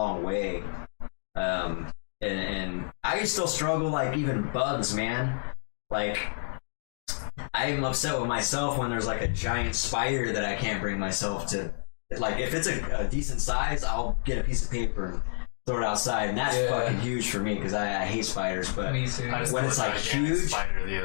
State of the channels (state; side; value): silent; right; digital silence